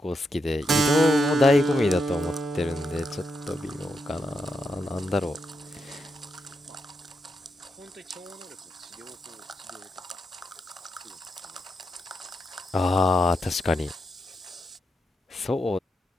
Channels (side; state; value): both; normal; correlation 0.83